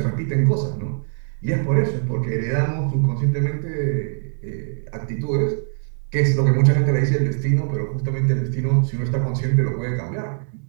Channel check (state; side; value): silent; left; 64 dB below the other